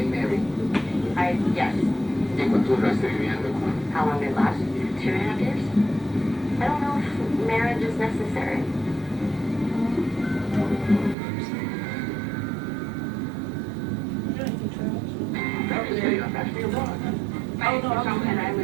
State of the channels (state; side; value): drops out; left; at 11.2 s